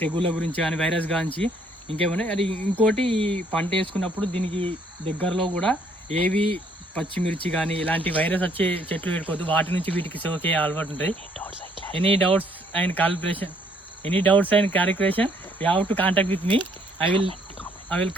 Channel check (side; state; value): both; normal; correlation 0.66